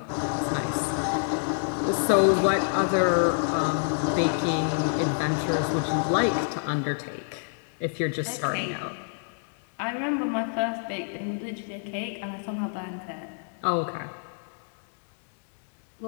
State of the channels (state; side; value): silent; right; digital silence